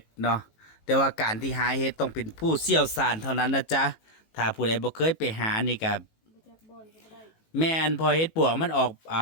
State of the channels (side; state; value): right; late; 18 ms